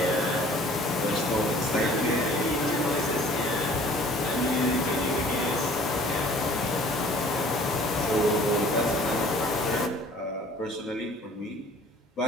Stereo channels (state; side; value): normal; both; correlation 0.52